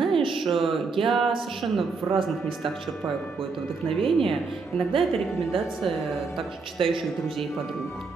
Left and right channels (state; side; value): quieter; left; 4.5 dB